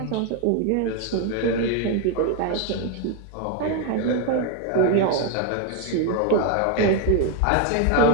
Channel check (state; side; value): different; both; correlation 0.01